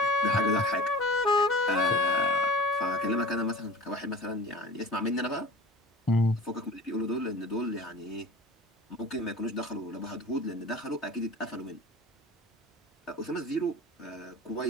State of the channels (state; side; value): normal; both; correlation 0.38